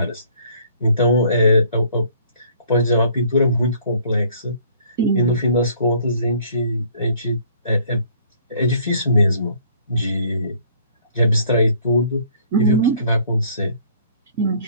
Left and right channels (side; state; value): both; inverted; correlation -0.58